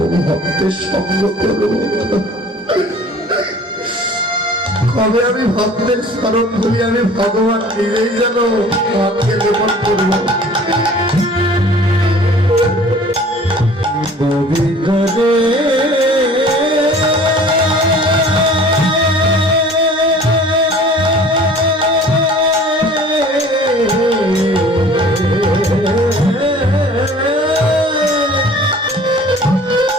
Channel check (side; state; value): both; normal; correlation 0.48